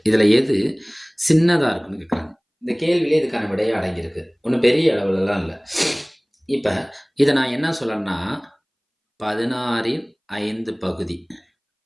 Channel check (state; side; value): identical; both; correlation 1.00